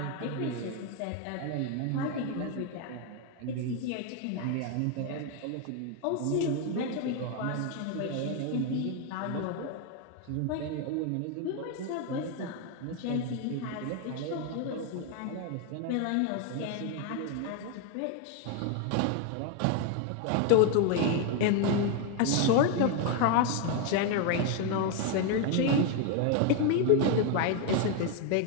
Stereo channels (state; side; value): different; both; correlation 0.01